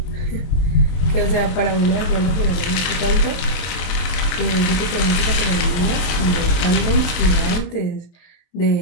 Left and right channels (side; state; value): right; late; 23 ms